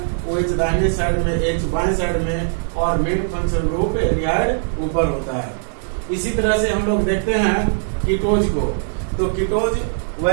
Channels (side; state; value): left; silent; digital silence